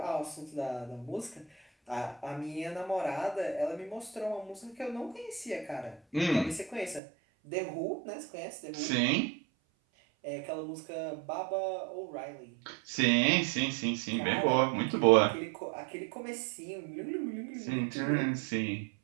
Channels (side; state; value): left; drops out; at 7.0 s